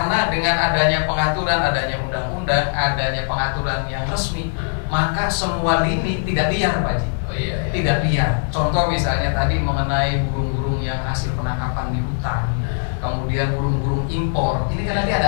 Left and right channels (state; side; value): silent; right; digital silence